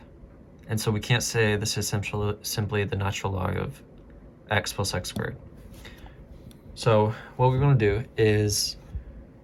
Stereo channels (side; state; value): both; identical; correlation 1.00